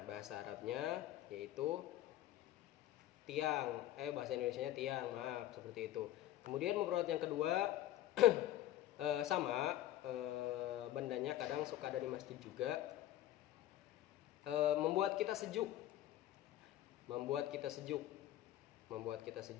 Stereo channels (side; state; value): right; quieter; 13.4 dB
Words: bahasa Arabnya yaitu tiang. Bahasa Indonesianya tiang, maaf, seperti itu. Kemudian mufradat yang kedua sama, bendanya kadang suka ada di masjid juga. Membuat kita sejuk. membuat kita